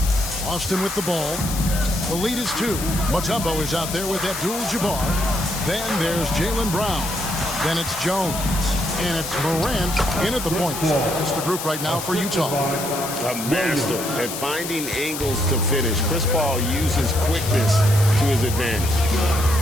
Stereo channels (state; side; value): noise; left; hiss, 7 dB below the sound